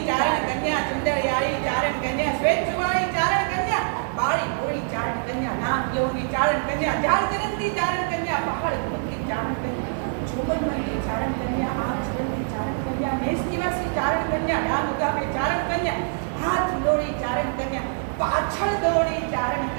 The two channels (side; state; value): left; silent; digital silence